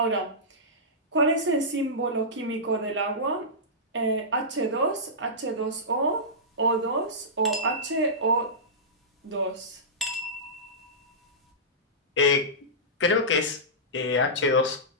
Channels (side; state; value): both; normal; correlation -0.17